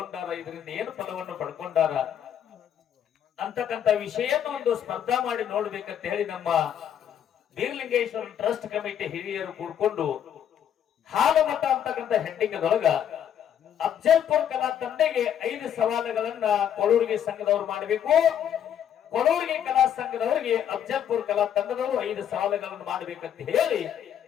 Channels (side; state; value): right; quieter; 9.4 dB